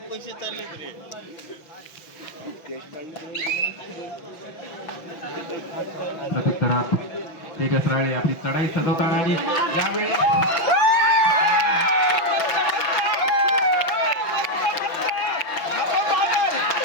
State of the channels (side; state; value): right; late; 6.0 ms